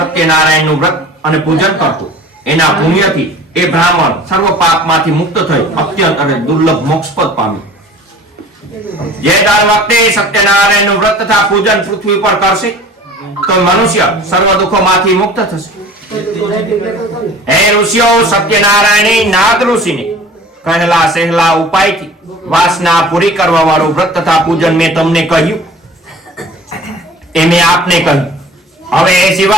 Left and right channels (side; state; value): both; normal; correlation 0.45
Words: વ્રત અને પૂજન કરતો. એના પુણ્યથી એ બ્રાહ્મણ સર્વ પાપમાંથી મુક્ત થઈ અત્યંત અને દુર્લભ મોક્ષપદ પામ્યો. જે દર વખતે સત્યનારાયણનું વ્રત તથા પૂજન પૃથ્વી પર કરશે તો મનુષ્ય સર્વ દુઃખોમાંથી મુક્ત થશે. હે ઋષિઓ, સત્યનારાયણે નાદ ઋષિને કહેલા સહેલા ઉપાયથી વાસના પૂરી કરવા વાળું વ્રત તથા પૂજન મેં તમને કહ્યું એ મેં આપને કહ્યું. હવે એ